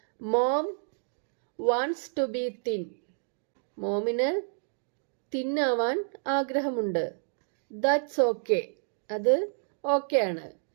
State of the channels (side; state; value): left; silent; digital silence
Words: Mom wants to be thin. മോമിന് തിന്നാവാൻ ആഗ്രഹമുണ്ട്. That's okay. അത് ഓക്കെ ആണ്.